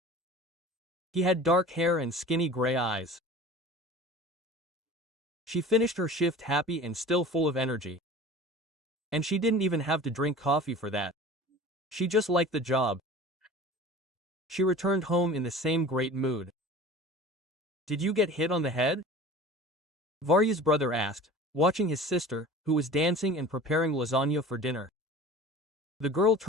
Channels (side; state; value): both; normal; correlation 0.40